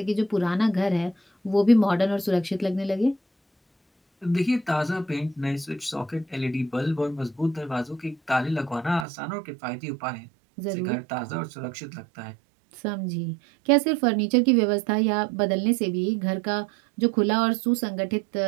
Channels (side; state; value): left; drops out; at 9.1 s